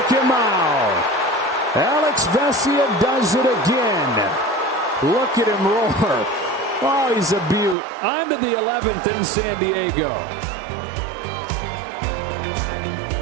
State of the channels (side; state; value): left; drops out; at 7.8 s